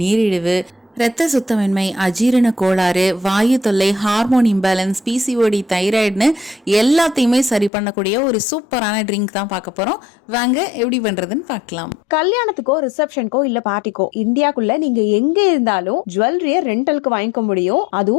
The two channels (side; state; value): right; drops out; at 7.7 s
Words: நீரிழிவு, இரத்த சுத்தமின்மை, அஜீரண கோளாறு, வாயு தொல்லை, ஹார்மோன் இம்பேலன்ஸ், பிசிஓடி, தைராய்டுன்னு எல்லாத்தையுமே சரி பண்ணக்கூடிய ஒரு சூப்பரான ட்ரிங்க் தான் பார்க்க போறோம். வாங்க எப்படி பண்றதுன்னு பார்க்கலாம். கல்யாணத்துக்கோ ரிசப்ஷனுக்கோ இல்ல பார்ட்டிக்கோ இந்தியாக்குள்ள நீங்க எங்க இருந்தாலும் ஜுவல்லரிய ரெண்டலுக்கு வாங்கிக்க முடியும்.